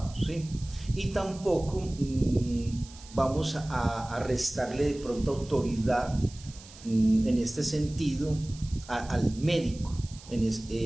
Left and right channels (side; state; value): right; noise; hiss, 19 dB below the sound